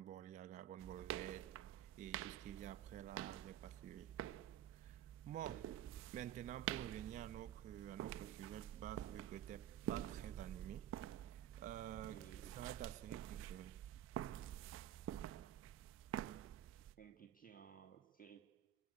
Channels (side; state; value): left; quieter; 11.8 dB